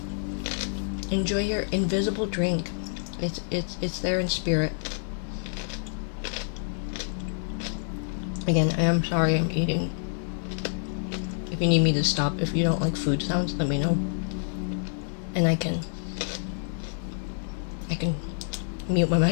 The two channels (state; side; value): silent; right; digital silence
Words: Enjoy your invisible drink. It's there in spirit. Again, I am sorry I'm eating. If you need me to stop, if you don't like food sounds, let me know. And I can mute my